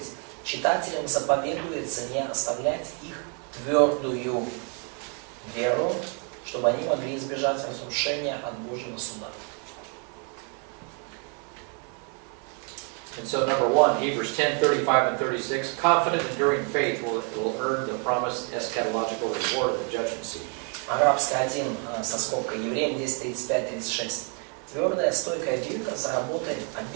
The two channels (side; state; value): left; quieter; 39.0 dB